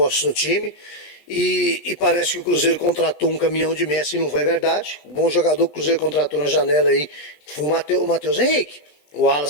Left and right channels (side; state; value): right; late; 20 ms